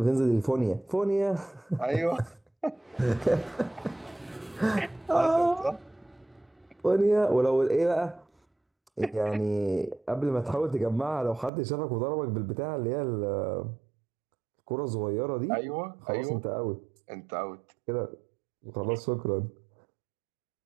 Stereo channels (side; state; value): left; drops out; at 11.5 s